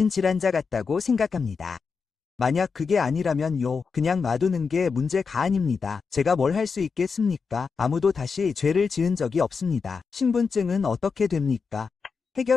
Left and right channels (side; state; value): right; quieter; 5.3 dB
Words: 같다고 생각합니다. 만약 그게 아니라면요, 그냥 놔두는 게 문제가 아닙니다. 제가 뭘 할 수 있겠습니까? 아무도 다시 죄를 지은 적이 없습니다. 신분증은 어떻게 됩니까?